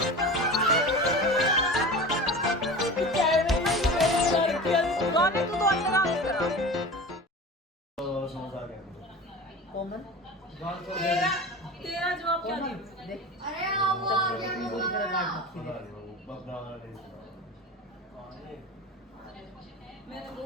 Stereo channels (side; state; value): both; normal; correlation 0.33